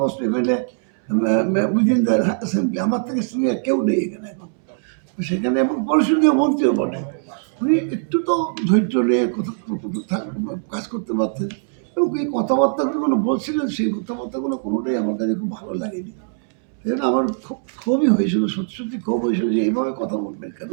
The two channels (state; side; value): silent; left; 65 dB below the other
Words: most MLA within the assembly, আমার থেকে সিনিয়র কেউ নেই এখানে এখন। সেখানে এবং পরিষদীয় মন্ত্রীও বটে, উনি একটু তো ধৈর্য নিয়ে কাজ করতে পারতেন। এবং এই কথাবার্তাগুলো বলছিলেন, সেই কথাবার্তাগুলো কোনোটাই আমার কাছে খুব ভালো লাগেনি। এই জন্য আমার খুব ক্ষোভই হয়েছিল, সত্যি সত্যি ক্ষোভ হয়েছিল যে এইভাবে কথা বলবেন কেন